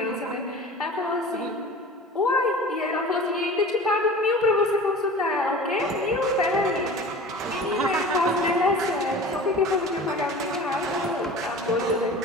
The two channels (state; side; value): normal; both; correlation 0.38